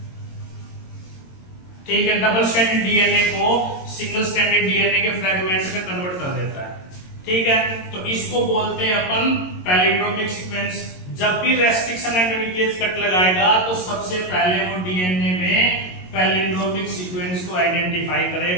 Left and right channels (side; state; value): right; late; 22 ms